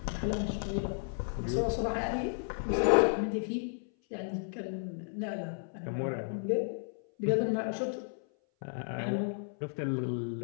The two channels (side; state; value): right; silent; 56 dB below the other